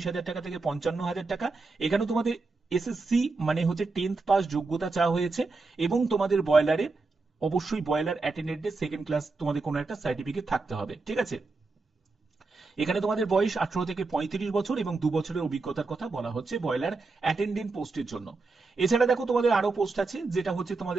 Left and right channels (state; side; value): quieter; left; 3.8 dB